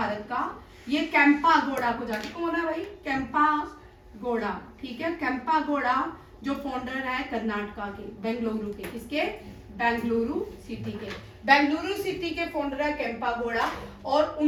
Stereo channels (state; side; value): identical; both; correlation 1.00